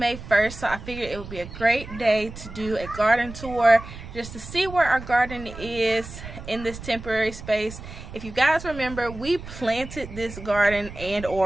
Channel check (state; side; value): noise; right; rumble, 13 dB below the sound